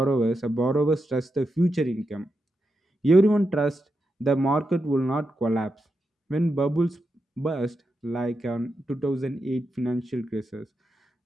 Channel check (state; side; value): normal; both; correlation 0.87